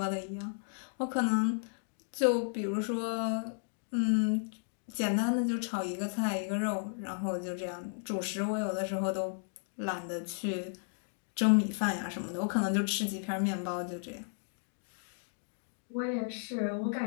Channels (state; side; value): silent; right; digital silence